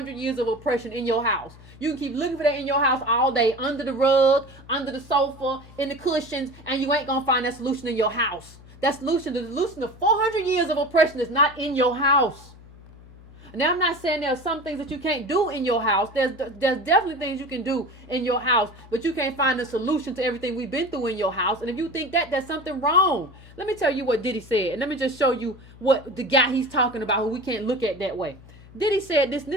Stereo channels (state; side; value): noise; left; hum, 21 dB below the sound